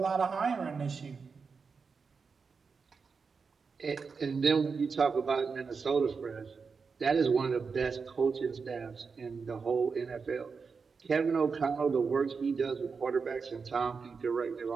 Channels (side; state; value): left; quieter; 5.2 dB